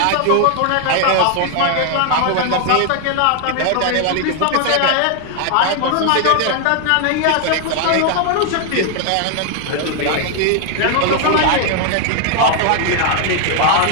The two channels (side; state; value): both; different; correlation 0.00